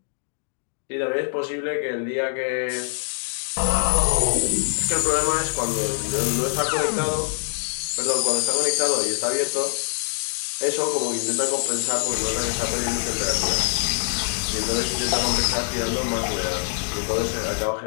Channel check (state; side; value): silent; right; digital silence